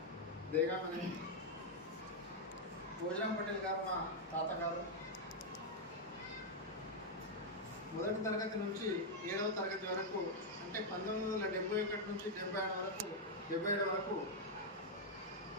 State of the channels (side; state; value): both; normal; correlation -0.02